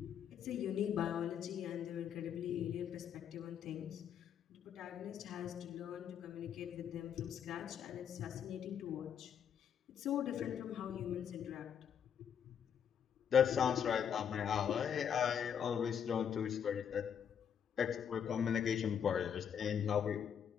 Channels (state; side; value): quieter; right; 8.2 dB